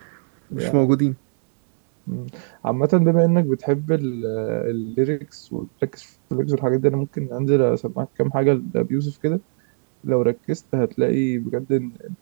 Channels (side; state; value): left; silent; digital silence